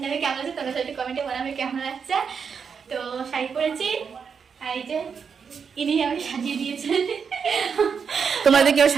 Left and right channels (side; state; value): left; quieter; 6.3 dB